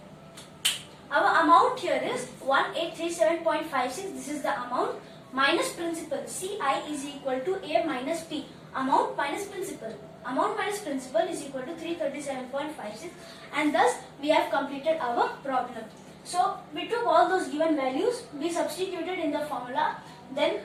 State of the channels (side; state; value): both; identical; correlation 1.00